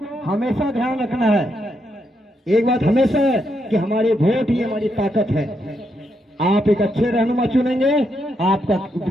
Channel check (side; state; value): both; normal; correlation 0.80